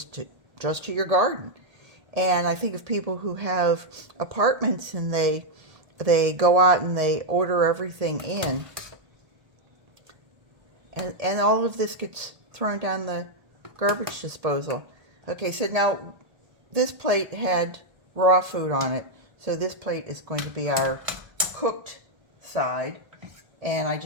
to your garden. And I think of people who have apartments and they go out and they order everything in, and all of this gets thrown down the garbage disposal. Okay, so now this plate had raw food on it, so this plate is going to be our cooked side. And I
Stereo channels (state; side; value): late; left; 1.8 ms